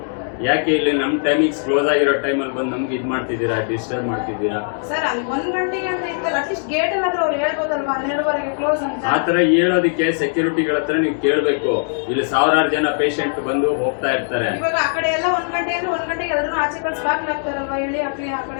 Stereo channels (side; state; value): right; silent; digital silence